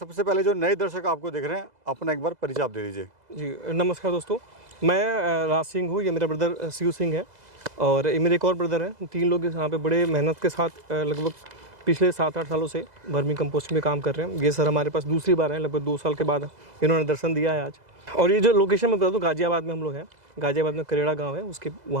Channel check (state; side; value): late; left; 2.0 ms